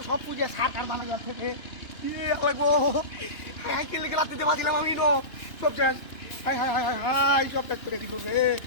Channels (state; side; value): late; right; 2.7 ms